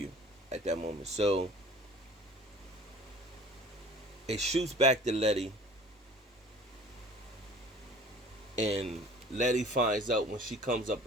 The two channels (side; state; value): both; normal; correlation 0.46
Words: at that moment. So it shoots back to Letty, and Letty finds out when she comes up